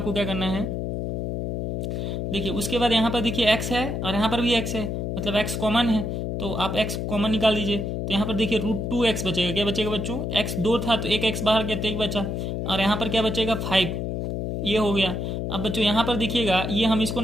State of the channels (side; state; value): left; noise; hum, 2 dB below the sound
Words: क्या करना है, देखिए उसके बाद यहाँ पर देखिए x है और यहाँ पर भी x है, मतलब x कॉमन है, तो आप x कॉमन निकाल दीजिए। तो यहाँ पर देखिए √2x बचेगा। क्या बचेगा बच्चों, x 2 था तो एक x बाहर गया तो 1 बचा, और यहाँ पर क्या बचेगा 5, ये हो गया। अब बच्चों यहाँ पर देखिएगा, ये हम इसको